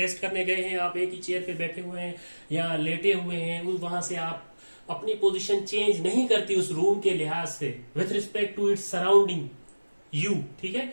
करने गए हैं, आप एक ही चेयर पे बैठे हुए हैं या लेटे हुए हैं, वहां से आप अपनी पोजीशन चेंज नहीं करती उस रूम के लिहाज से, with respect to its surrounding you, ठीक है,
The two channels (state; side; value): inverted; both; correlation -1.00